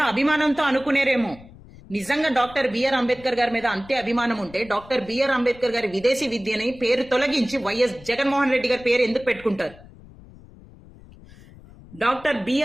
అభిమానంతో అనుకునేరేమో, నిజంగా డాక్టర్ బిఆర్ అంబేద్కర్ గారి మీద అంతే అభిమానం ఉంటే డాక్టర్ బిఆర్ అంబేద్కర్ గారి విదేశీ విద్యని పేరు తొలగించి వైఎస్ జగన్మోహన్ రెడ్డి గారి పేరు ఎందుకు పెట్టుకుంటారు? డాక్టర్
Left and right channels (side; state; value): left; noise; rumble, 21 dB below the sound